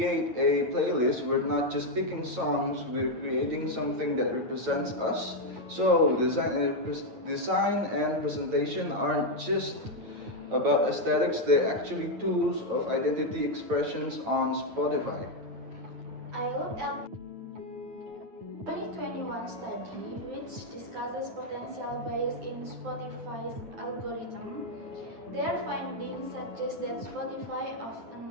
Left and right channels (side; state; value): left; late; 9.1 ms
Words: a playlist, we're not just picking songs, we're creating something that represents us. So, design and presentation aren't just about aesthetics, they're actually tools of identity expressions on Spotify. I looked at 2021 study which discusses potential bias in Spotify's algorithm. Their findings suggest that Spotify